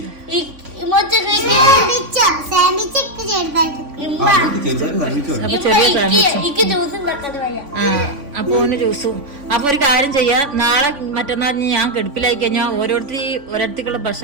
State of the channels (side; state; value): left; late; 3.5 ms